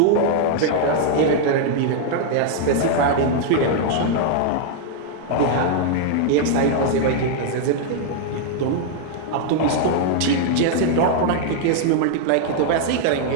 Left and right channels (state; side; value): different; both; correlation 0.00